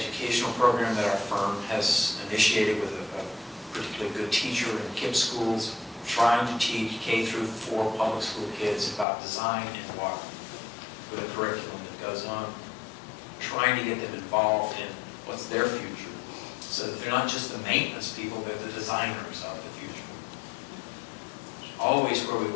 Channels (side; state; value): right; drops out; at 9.1 s